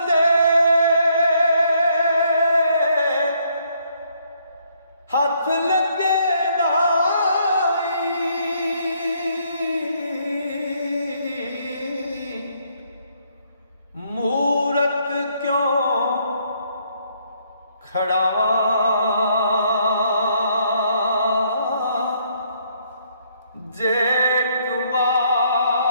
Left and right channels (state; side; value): inverted; both; correlation -0.69